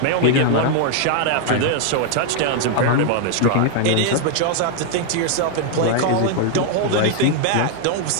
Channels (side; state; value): both; different; correlation 0.00